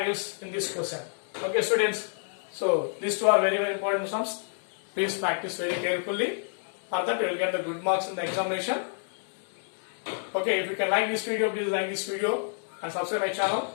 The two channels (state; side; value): silent; right; digital silence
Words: in this question. Okay students, so these two are very important sums. Please practice very carefully. For that you will get the good marks in the examination. Okay, if you can like this video, please like this video and subscribe my channel,